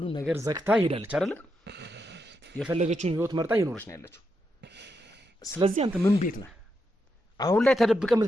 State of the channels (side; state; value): both; normal; correlation 0.83